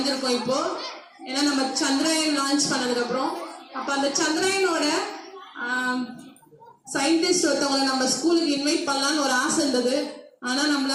இப்போ. ஏன்னா நம்ம சந்திராயன் லான்ச் பண்ணதுக்கு அப்புறம் அப்ப அந்த சந்திராயனோட சயின்டிஸ்ட் ஒருத்தவங்களை நம்ம ஸ்கூலுக்கு இன்வைட் பண்ணலாம்னு ஒரு ஆசை இருந்தது. ஆனா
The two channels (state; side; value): identical; both; correlation 1.00